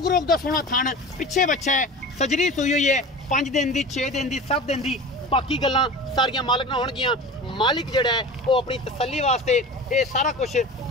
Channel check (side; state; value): both; normal; correlation 0.34